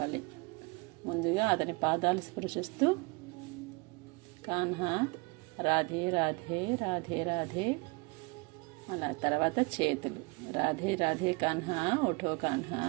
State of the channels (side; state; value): left; quieter; 28.2 dB